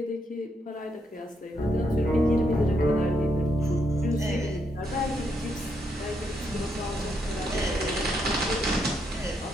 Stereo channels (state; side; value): normal; both; correlation 0.78